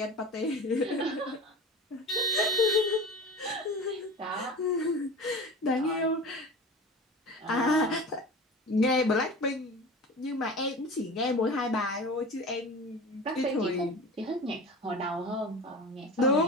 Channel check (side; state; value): both; normal; correlation 0.34